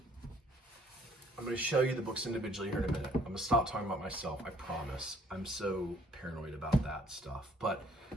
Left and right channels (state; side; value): normal; both; correlation 0.61